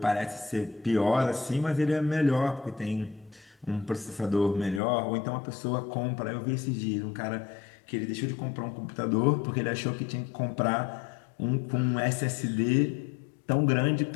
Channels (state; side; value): drops out; right; at 4.8 s